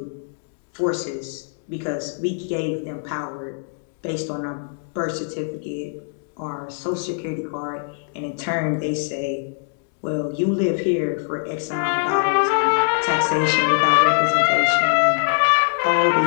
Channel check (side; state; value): right; silent; digital silence